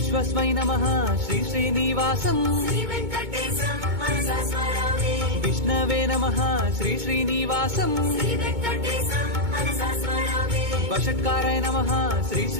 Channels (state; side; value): late; left; 2.2 ms